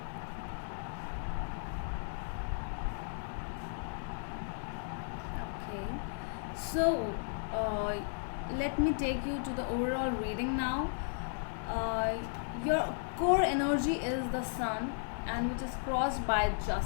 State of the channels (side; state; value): right; silent; 54 dB below the other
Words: Okay, so let me take you to the overall reading now. Your core energy is the sun, and which is crossed by